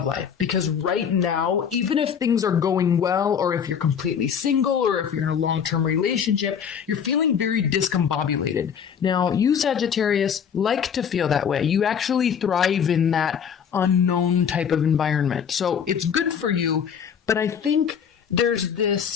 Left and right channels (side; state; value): right; quieter; 7.6 dB